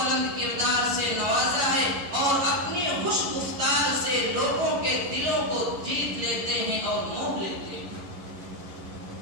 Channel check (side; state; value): left; late; 11 ms